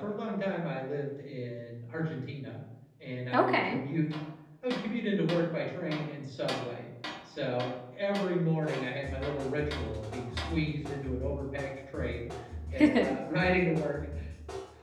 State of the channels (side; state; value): both; identical; correlation 1.00